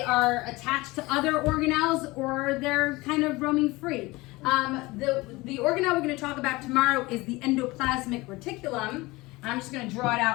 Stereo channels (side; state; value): right; quieter; 21.7 dB